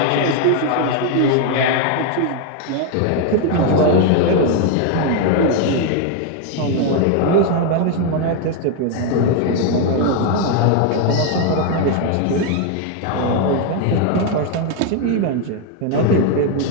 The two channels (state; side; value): different; both; correlation 0.01